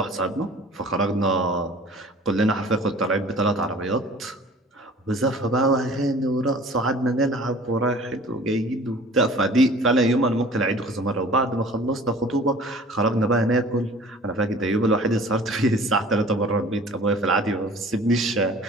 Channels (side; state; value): both; normal; correlation 0.47